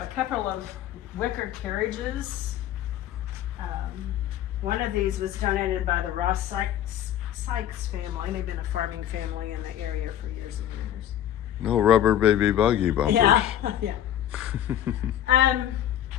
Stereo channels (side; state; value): right; quieter; 11.2 dB